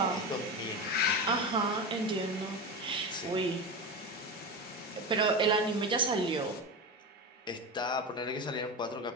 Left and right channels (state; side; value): normal; both; correlation 0.22